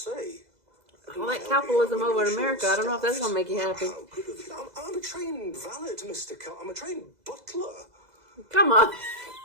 All that capitalism over in America, I don't know if that's gonna make you happy. How good of you. I'm a trained valet, Mr. I'm a trained butler. Come on.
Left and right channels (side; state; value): left; late; 2.0 ms